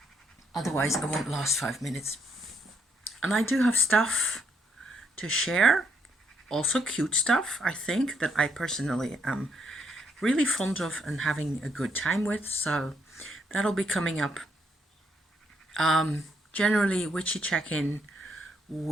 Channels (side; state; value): both; normal; correlation 0.74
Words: Otherwise, I won't last 5 minutes. And I do have stuff to share, also cute stuff, I think, that I personally am really fond of and having a good time with, so that'll be coming up. Generally, witchy check-in